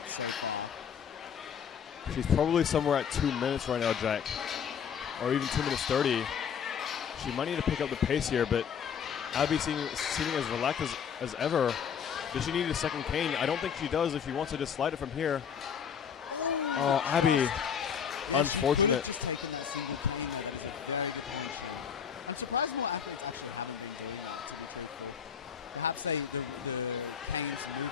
She's probably somewhere at 2 minutes right now, Jack. Or even 2 minutes 30. She might need to pick up the pace here, but Abby seeming as relaxed as ever. Does she need a second cane? I don't think she does if she wants to just slide it from here. Oh, Abby. Unfortunate.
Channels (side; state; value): right; quieter; 7.5 dB